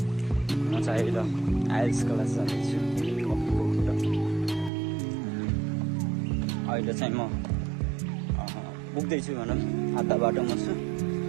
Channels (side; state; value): left; drops out; at 4.7 s